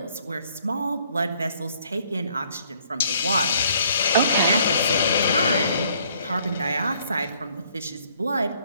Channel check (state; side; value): inverted; both; correlation -0.63